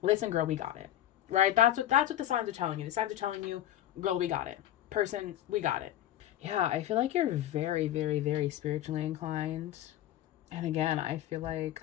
listen, girl, we got it. Right? That's what the signs are telling you. The signs are telling you, girl, we got it. Person, we got it. Yeah, I feel like you're very, very, very spiritually inclined. And again, I feel like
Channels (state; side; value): quieter; right; 12.6 dB